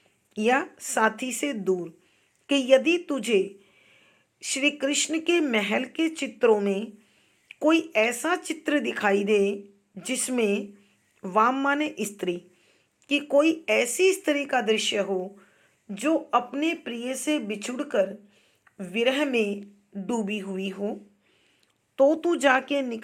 या साथी से दूर, कि यदि तुझे श्री कृष्ण के महल के चित्रों में कोई ऐसा चित्र दिखाई दे जिसमें वाम माने स्त्री, कि कोई ऐसी स्त्री का दृश्य हो जो अपने प्रिय से बिछुड़कर विरह में डूबी हुई हो, तो तू जाके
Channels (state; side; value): identical; both; correlation 1.00